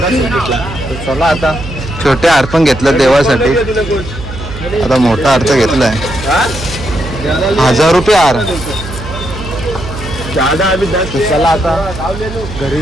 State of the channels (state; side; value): noise; right; hum, 11 dB below the sound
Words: सुख भेटला. तर चला आता छोटे हार पण घेतलं देवासाठी. आता मोठा हार तर घेतलाय 1000 रुपये हार. तर चला आता घरी